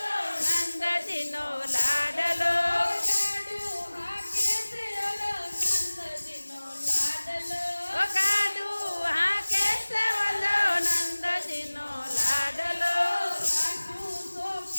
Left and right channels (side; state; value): both; inverted; correlation -1.00